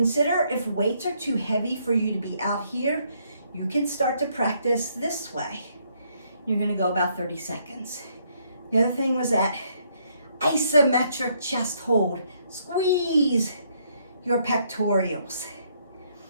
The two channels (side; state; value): both; inverted; correlation -0.71